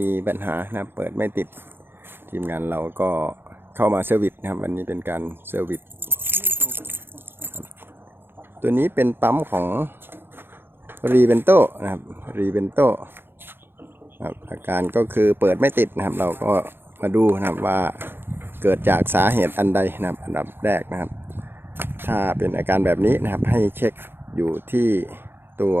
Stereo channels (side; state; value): left; late; 0.10 ms